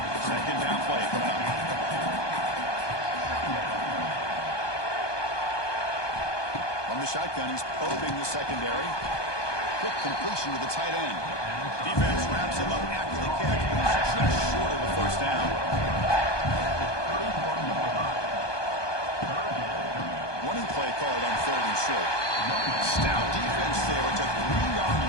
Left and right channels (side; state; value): right; late; 1.2 ms